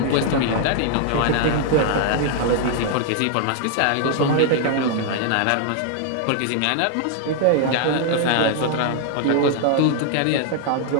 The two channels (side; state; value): both; different; correlation 0.00